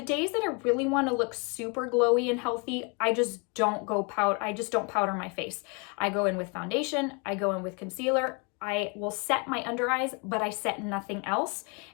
days that I really want to look super glowy and healthy, I just don't powder my face. I go in with foundation, I go in with concealer, I will set my under eyes, but I set nothing else,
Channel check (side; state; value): right; quieter; 32.3 dB